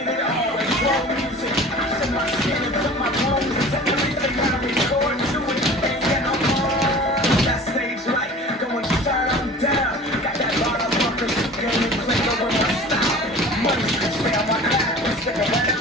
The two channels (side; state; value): both; normal; correlation 0.41